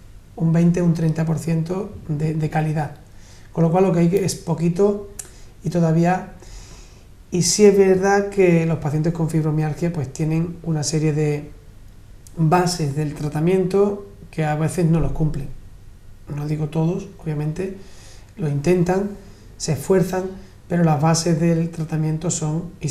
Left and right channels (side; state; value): both; identical; correlation 1.00